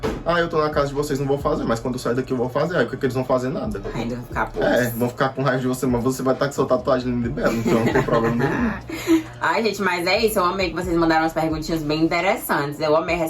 Ah, eu tô na casa de vocês, não vou fazer, mas quando eu sair daqui eu vou fazer. Aí o que eles vão fazer? Nada. Ainda vão ficar vão ficar com raiva de você, mas você vai estar com sua tatuagem linda e bela, então não tem problema nenhum. Ai, gente, mas é isso. Eu amei que vocês mandaram umas perguntinhas bem interessantes. Eu amei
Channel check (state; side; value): identical; both; correlation 1.00